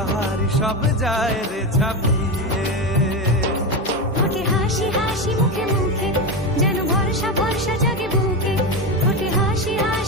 হারি সব যায় রে ছাপিয়ে। ওঠে হাসি হাসি মুখে মুখে যেন ভরসা ভরসা জাগে বুকে। ওঠে হাসি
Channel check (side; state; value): both; normal; correlation 0.16